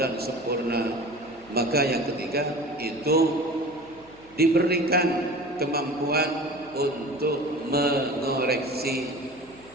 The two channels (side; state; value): right; noise; hum, 27 dB below the sound